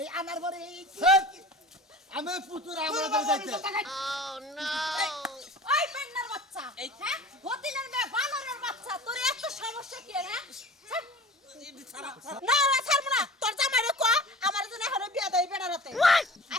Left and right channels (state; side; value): normal; both; correlation 0.39